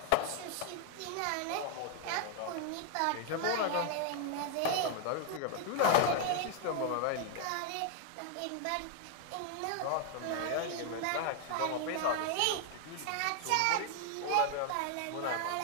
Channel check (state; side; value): different; both; correlation 0.00